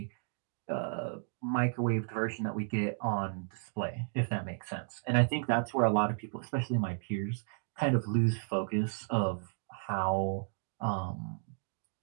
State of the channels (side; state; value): left; silent; 55 dB below the other